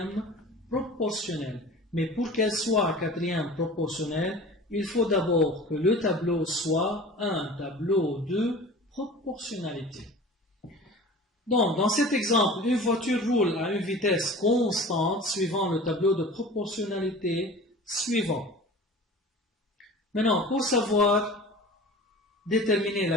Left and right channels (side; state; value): both; normal; correlation 0.40